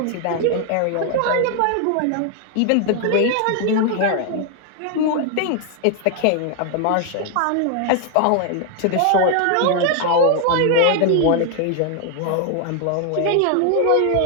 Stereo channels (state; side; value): different; both; correlation 0.00